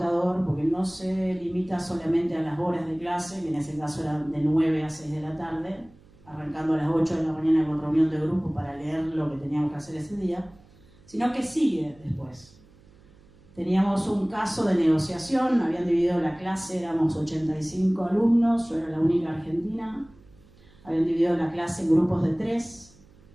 porque no se limita solamente a las horas de clase, que en ese caso eran de 9 a 6 de la tarde, arrancando a las 8 de la mañana con reunión de grupo para leer lo que teníamos que hacer ese día, sino que sigue después. Teníamos un caso de negociación, habían dividido la clase, éramos 85 alumnos, yo era la única argentina. Habían dividido la clase en grupos de 3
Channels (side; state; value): right; noise; hum, 27 dB below the sound